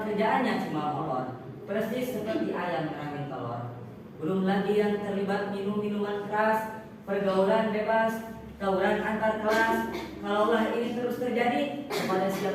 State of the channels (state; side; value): identical; both; correlation 1.00